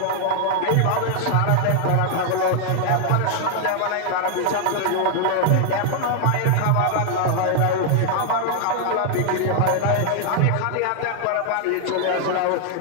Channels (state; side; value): different; both; correlation 0.00